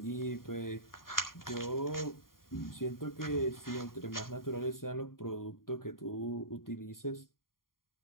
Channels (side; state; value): right; late; 0.91 ms